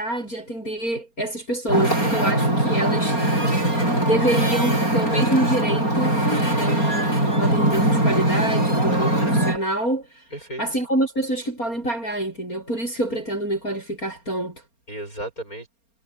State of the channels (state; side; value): late; right; 4.3 ms